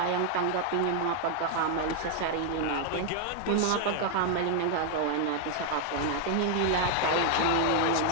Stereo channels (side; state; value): both; different; correlation 0.00